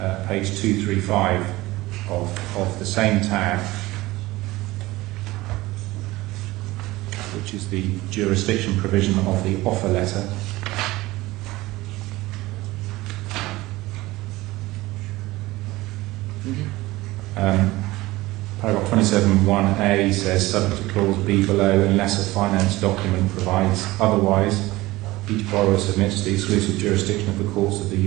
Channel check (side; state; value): left; quieter; 19.1 dB